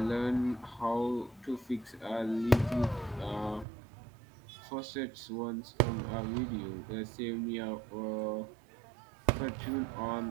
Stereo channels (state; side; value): drops out; left; at 3.7 s